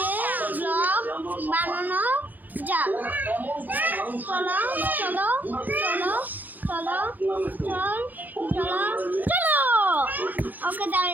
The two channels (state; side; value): late; left; 0.084 ms